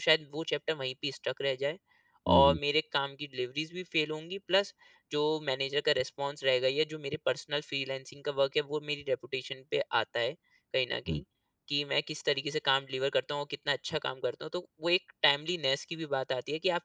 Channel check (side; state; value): both; identical; correlation 1.00